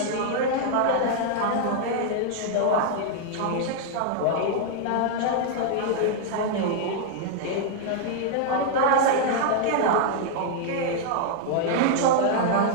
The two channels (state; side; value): different; both; correlation -0.01